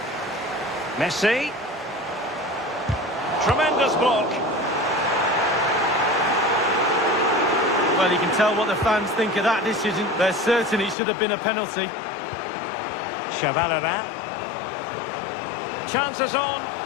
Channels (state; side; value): drops out; right; at 11.0 s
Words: Messi. Tremendous block. Well, you can tell what the fans think of that decision. They're certain it should have been a penalty. Chavalera. Chances on.